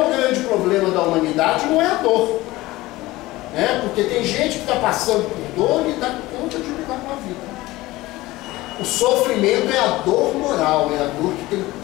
grande problema da humanidade não é a dor. Porque tem gente que está passando por dor e dá conta de lidar com a vida. O sofrimento é a dor moral, é a dor que tem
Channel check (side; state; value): right; quieter; 18.7 dB